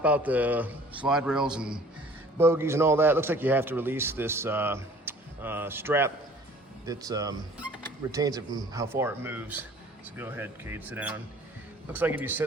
out the slide rails and bogies and all that, looks like you have to release this strap that retains it from how far it moves. So go ahead, Cade, sit down. Looks like if you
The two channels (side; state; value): both; normal; correlation 0.51